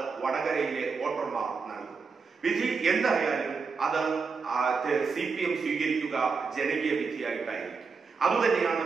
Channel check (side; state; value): left; quieter; 5.0 dB